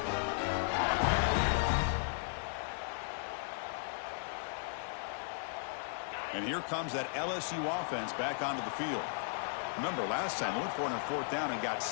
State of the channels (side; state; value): right; silent; digital silence